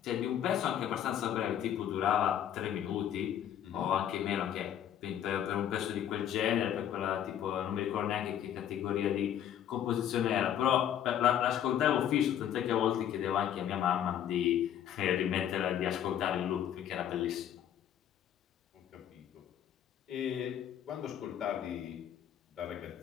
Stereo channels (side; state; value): right; quieter; 10.2 dB